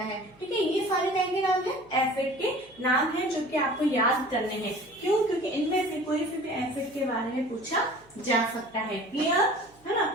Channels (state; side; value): noise; right; hum, 29 dB below the sound